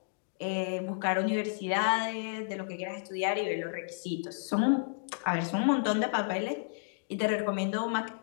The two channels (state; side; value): silent; right; digital silence